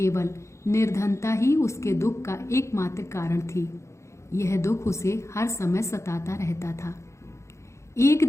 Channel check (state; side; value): late; right; 0.14 ms